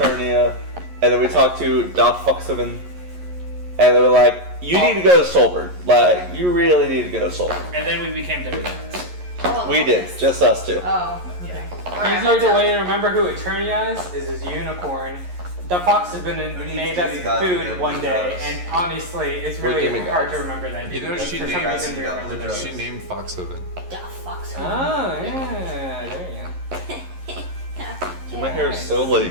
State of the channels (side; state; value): left; late; 11 ms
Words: and then we talked to Doc Foxhaven, and they were like, you need to go to Solberg. Like, you really need to go to Solberg. And then we became demigods. We did, just us two. Oh, okay. Easier to way to remember who Eternia is his unicorn. The fox has been made as food one day, and honestly, it's We're really demigods. hard to remember that. You know because she for some named- reason we remember those. She named Foxhaven. The fox. Oh, yeah, there you go. My hair is so